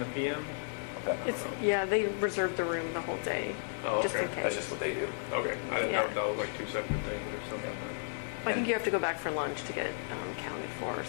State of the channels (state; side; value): silent; right; digital silence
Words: PM. Okay. Yeah, they reserved the room the whole day, Oh, just in okay. case. That's just what they do. Okay, I didn't Yeah. know if that was like two separate things or something. I think you have to go back for lunch to get counted for or